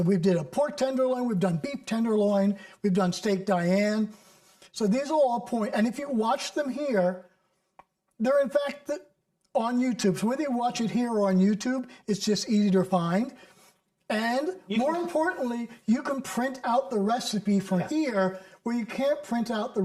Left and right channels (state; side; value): identical; both; correlation 1.00